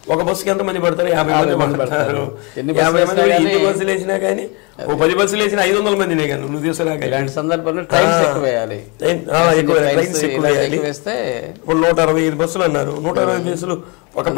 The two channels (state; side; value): quieter; right; 30.3 dB